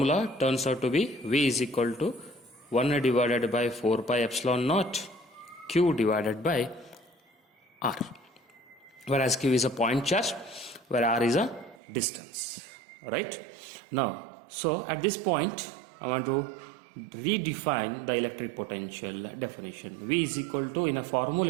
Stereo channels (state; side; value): drops out; left; at 11.8 s